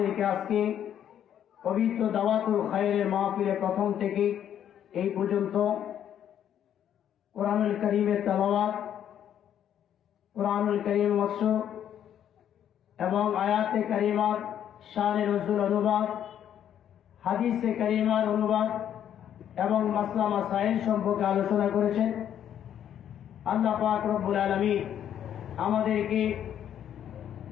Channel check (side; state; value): right; quieter; 10.0 dB